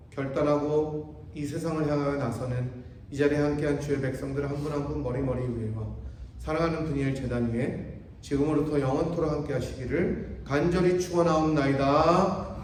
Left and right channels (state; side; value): identical; both; correlation 1.00